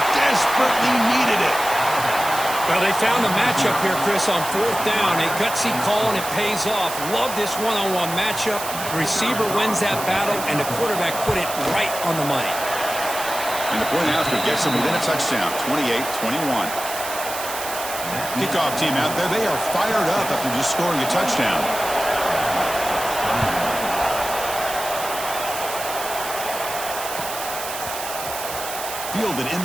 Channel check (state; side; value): noise; right; hiss, 8 dB below the sound